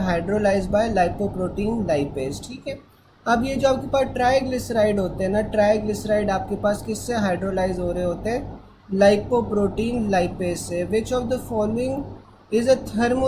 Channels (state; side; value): identical; both; correlation 1.00